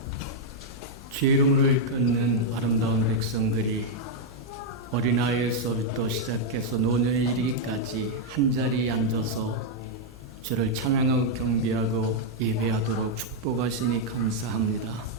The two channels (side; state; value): left; noise; hum, 20 dB below the sound